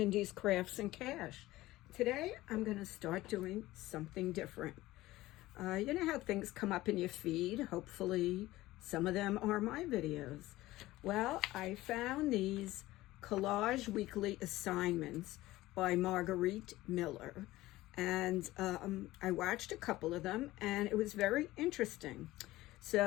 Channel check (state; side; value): quieter; right; 17.3 dB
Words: Crafts and Cash. Today I'm going to start doing something different. You know how things come up in your feed? Hopefully some of them are my videos. Well, I found these collage weekly assignments by Margarete Miller. And I watched a couple of them and it was very interesting.